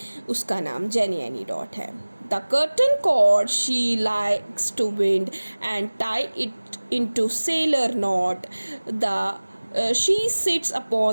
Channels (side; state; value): both; inverted; correlation -1.00